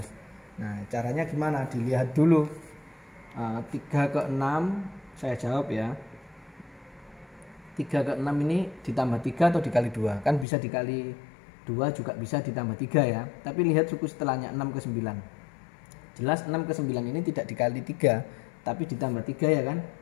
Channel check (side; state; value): right; drops out; at 10.5 s